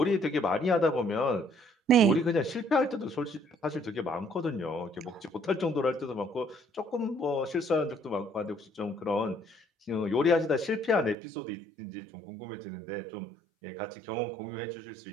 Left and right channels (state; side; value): drops out; left; at 11.2 s